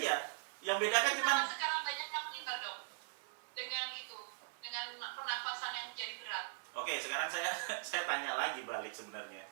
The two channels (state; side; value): silent; left; 51 dB below the other